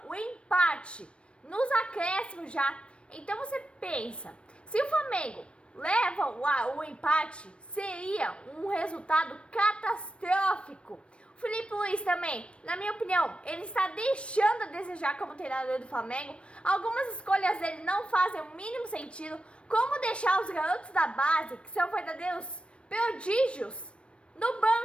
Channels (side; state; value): right; late; 0.059 ms